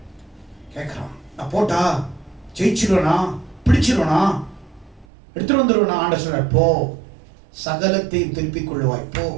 கேட்கிறான், நான் போட்டா ஜெயிச்சிருவனா, பிடிச்சிருவனா, எடுத்துட்டு வந்துருவனா? ஆண்ட சொல்ற, போ, சகலத்தையும் திருப்பிக் கொள்ளுவாய், போ.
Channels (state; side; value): drops out; left; at 5.1 s